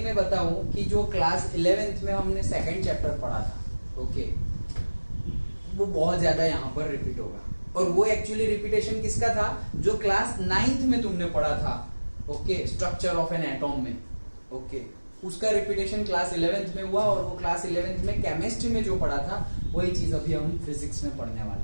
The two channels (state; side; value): inverted; both; correlation -1.00